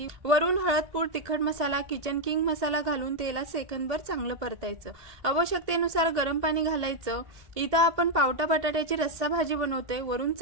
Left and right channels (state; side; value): late; left; 1.8 ms